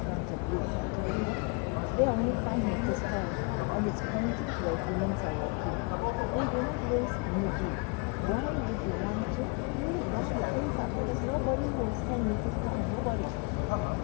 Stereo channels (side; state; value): right; quieter; 30.4 dB